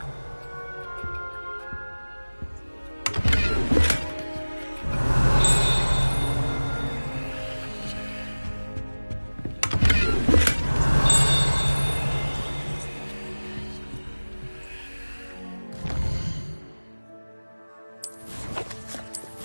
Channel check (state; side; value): inverted; both; correlation -1.00